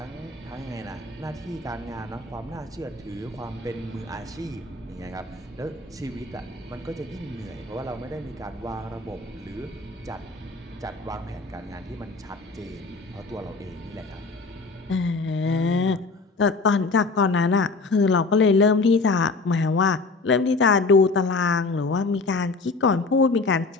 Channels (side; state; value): right; quieter; 3.7 dB